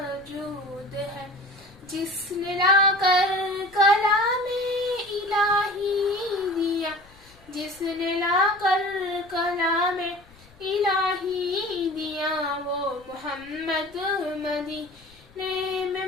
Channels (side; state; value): left; noise; rumble, 26 dB below the sound